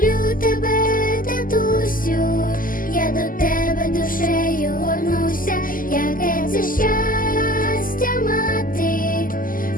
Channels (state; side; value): late; right; 0.41 ms